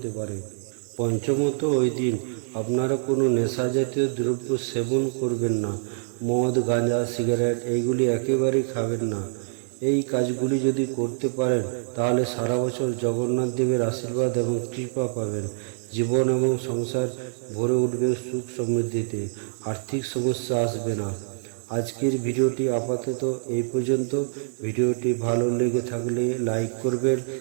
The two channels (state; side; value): silent; left; 56 dB below the other